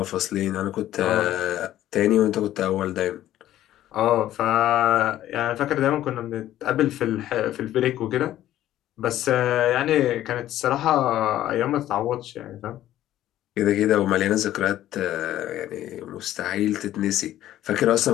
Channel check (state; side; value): quieter; right; 13.2 dB